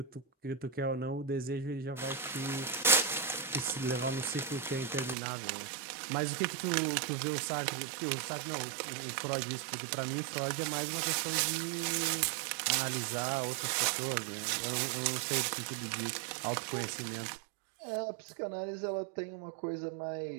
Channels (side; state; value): left; drops out; at 5.2 s